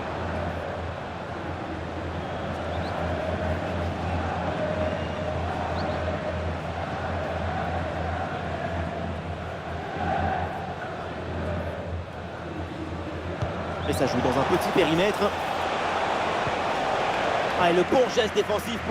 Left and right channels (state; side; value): identical; both; correlation 1.00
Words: Et ça joue dans un petit périmètre. Ah, et le bon geste défensif